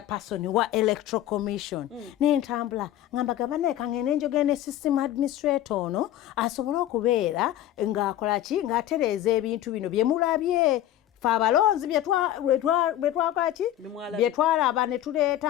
wa Electoral Commission n'entambula ngamba gabane kangene njogene system administrator ono asobola okubeera ng'akola ki ng'atereeza ebintu bino bye mulabye fe abalonzi byetwalaba ne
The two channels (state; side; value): quieter; right; 12.5 dB